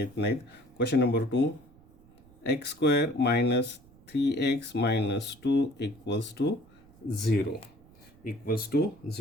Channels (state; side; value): noise; right; rumble, 26 dB below the sound